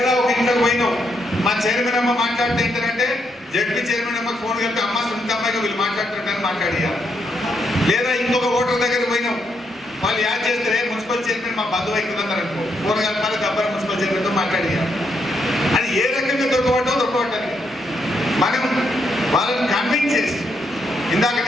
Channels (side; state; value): both; normal; correlation 0.78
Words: ఒక ఇంట్లోకి పోయినాం, మా చైర్మన్ అమ్మ మాట్లాడితే ఏంటంటే జడ్పీ చైర్మన్ అమ్మకి ఫోన్ కలిపి అమ్మ సునీత అమ్మాయిగా వీళ్ళు మాట్లాడుతుంటారని మాట్లాడేయాలి. లేదా ఇంకొక ఓటర్ దగ్గర పోయినాం, వాళ్ళు యాడ్ చేస్తే మున్సిపల్ చైర్మన్ మా బంధువు అవుతుందన్నారు అనుకో, ఫోన్ కలపాలి, గబ్బర్ మున్సిపల్ చైర్మన్తో మాట్లాడేయాలి. అది ఏ రకంగా దొరకబట్టాలి మనం వాళ్ళని కన్విన్స్ చేసి. ఇందాక